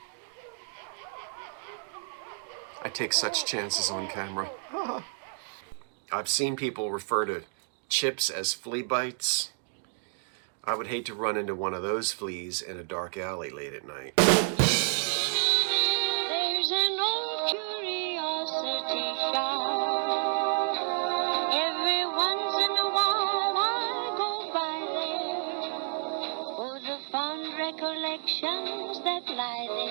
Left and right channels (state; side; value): silent; left; digital silence